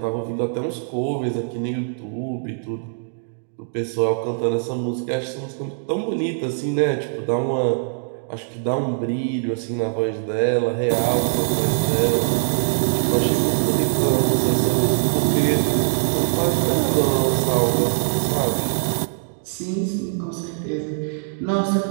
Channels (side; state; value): left; silent; digital silence